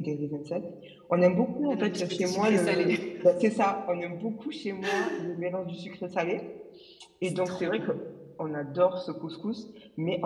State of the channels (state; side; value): identical; both; correlation 1.00